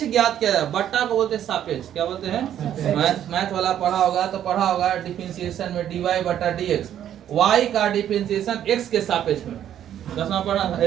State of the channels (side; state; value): left; quieter; 10.6 dB